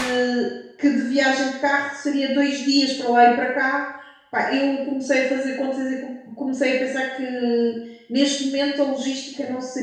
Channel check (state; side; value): identical; both; correlation 1.00